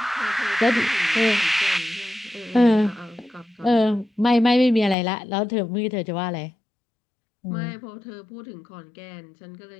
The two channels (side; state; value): right; drops out; at 5.0 s